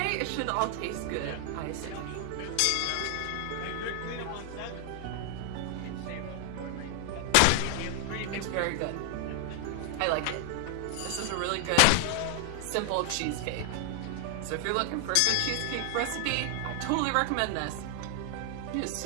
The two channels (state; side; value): different; both; correlation 0.00